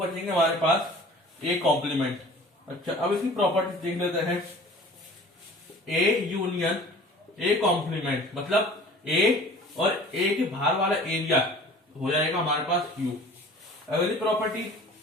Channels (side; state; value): both; normal; correlation 0.45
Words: हमारे पास a कॉम्प्लीमेंट। अच्छा, अब इसकी प्रॉपर्टीज देख लेते हैं। a यूनियन a कॉम्प्लीमेंट मतलब a और a के बाहर वाला एरिया हो जाएगा हमारे पास u। अगली प्रॉपर्टी